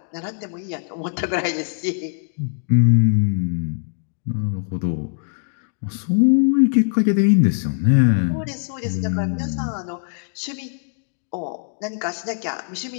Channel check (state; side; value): silent; right; digital silence